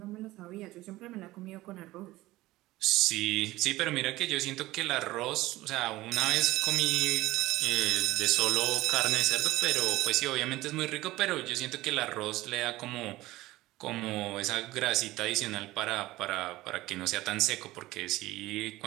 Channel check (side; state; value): left; quieter; 17.9 dB